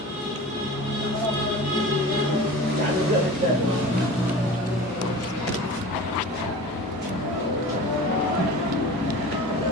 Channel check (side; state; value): both; normal; correlation 0.37